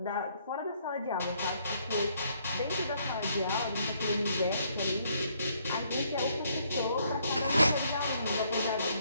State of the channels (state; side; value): inverted; both; correlation -0.69